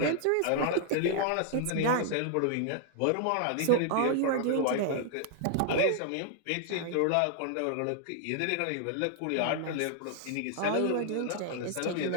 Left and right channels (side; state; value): both; different; correlation 0.00